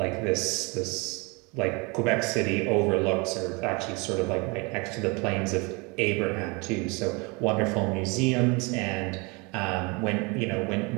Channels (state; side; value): quieter; left; 28.6 dB